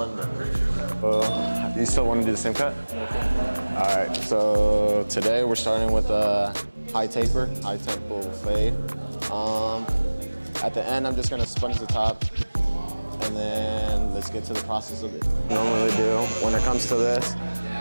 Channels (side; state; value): both; inverted; correlation -1.00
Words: You still want to do the same cut? All right, so today we're starting with a high tempo fade. At the end, I'm just gonna sponge the top, and then let's get to the process of it. Normally do when it comes to this,